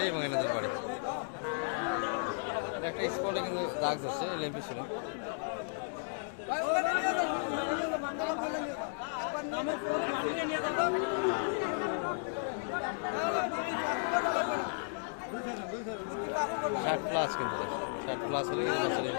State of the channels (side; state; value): right; silent; digital silence